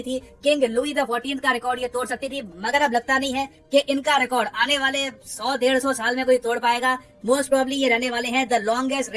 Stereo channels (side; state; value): both; identical; correlation 1.00